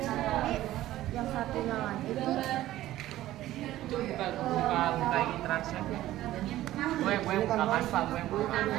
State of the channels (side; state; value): left; quieter; 14.8 dB